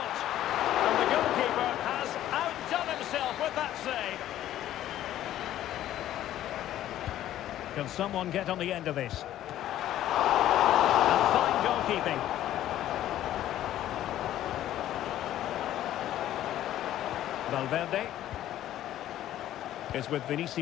And the goalkeeper has outdone himself with that save. Can someone get on the end of this? And fine goalkeeping. Valverde is with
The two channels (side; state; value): right; quieter; 12.8 dB